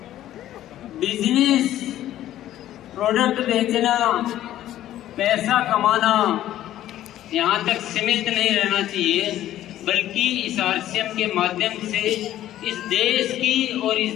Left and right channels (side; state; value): right; quieter; 13.0 dB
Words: बिजनेस, प्रोडक्ट बेचना, पैसा कमाना यहाँ तक सीमित नहीं रहना चाहिए, बल्कि इस आरसीएम के माध्यम से इस देश की और इस